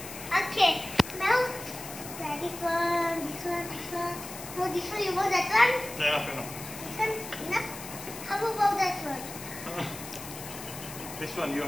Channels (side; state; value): left; noise; hiss, 12 dB below the sound